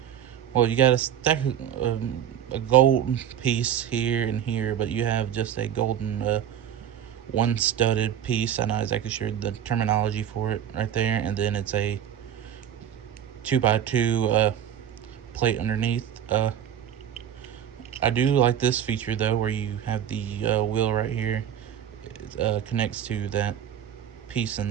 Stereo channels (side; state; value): left; quieter; 9.7 dB